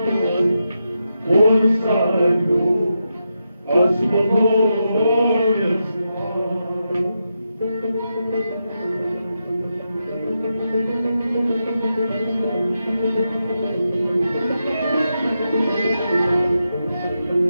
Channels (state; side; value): inverted; both; correlation -0.86